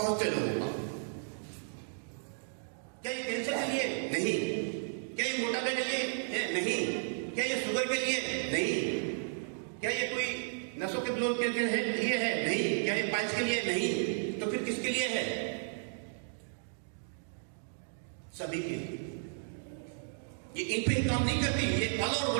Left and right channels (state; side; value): silent; left; digital silence